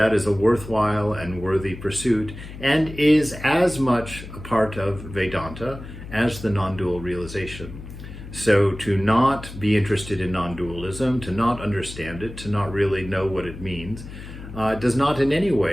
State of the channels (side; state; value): left; noise; hum, 13 dB below the sound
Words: is a worthwhile and worthy pursuit, and is as much a part of Vedanta as the non-dual realization. So to not be interested in non-dualism, to not understand it, to not really know what it means, does not in any